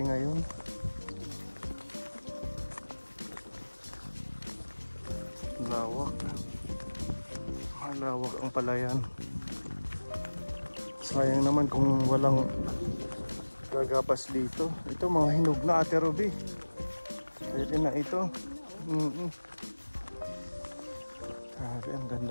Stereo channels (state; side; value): inverted; both; correlation -1.00